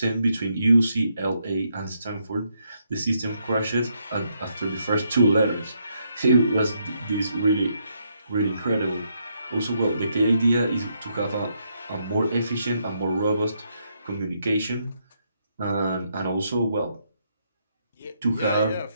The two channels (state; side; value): inverted; both; correlation -0.77